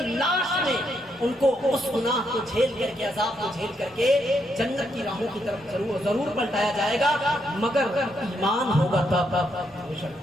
لاش میں ان کو اس گناہ کو جھیل کر کے، عذاب کو جھیل کر کے جنت کی راہوں کی طرف ضرور پلٹایا جائے گا، مگر ایمان ہوگا تب۔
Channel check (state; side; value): normal; both; correlation 0.77